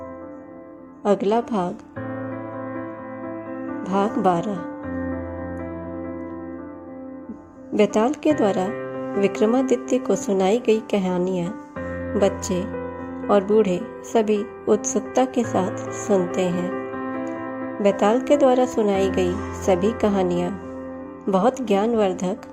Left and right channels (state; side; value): identical; both; correlation 1.00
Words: अगला भाग, भाग 12। बेताल के द्वारा विक्रमादित्य को सुनाई गई कहानियाँ बच्चे और बूढ़े सभी उत्सुकता के साथ सुनते हैं। बेताल के द्वारा सुनाई गई सभी कहानियाँ बहुत ज्ञानवर्धक